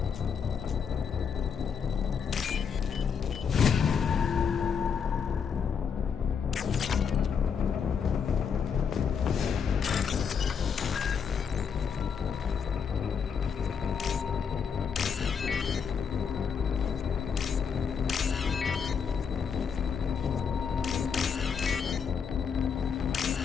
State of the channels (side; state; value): right; quieter; 6.6 dB